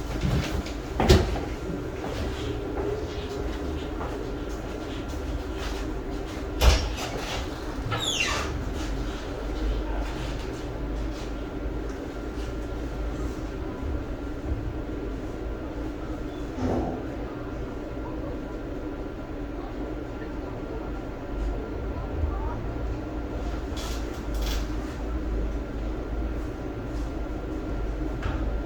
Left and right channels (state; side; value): identical; both; correlation 1.00